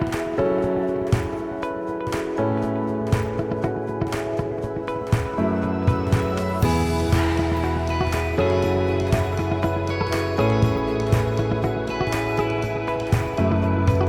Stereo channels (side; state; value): both; identical; correlation 1.00